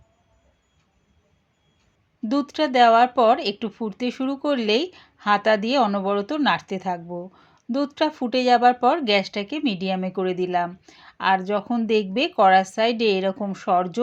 দুধটা দেওয়ার পর একটু ফুটতে শুরু করলেই হাতা দিয়ে অনবরত নাড়তে থাকবো। দুধটা ফুটে যাবার পর গ্যাসটাকে মিডিয়ামে করে দিলাম। আর যখন দেখবে কড়ার সাইডে এরকম সর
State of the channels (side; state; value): both; identical; correlation 1.00